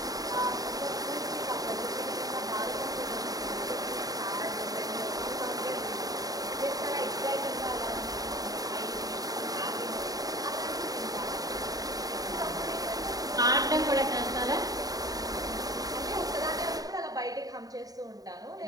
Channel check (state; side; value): late; left; 0.18 ms